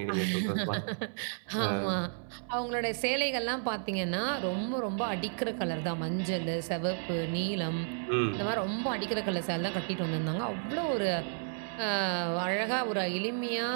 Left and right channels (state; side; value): silent; left; 56 dB below the other